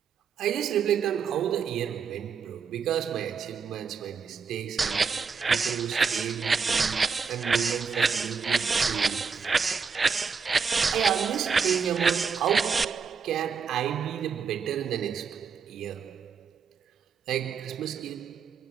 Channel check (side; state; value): left; quieter; 5.8 dB